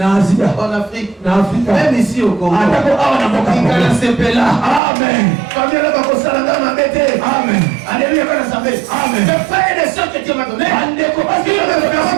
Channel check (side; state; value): left; drops out; at 4.8 s